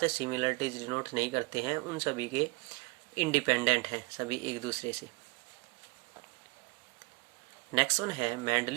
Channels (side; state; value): left; quieter; 27.1 dB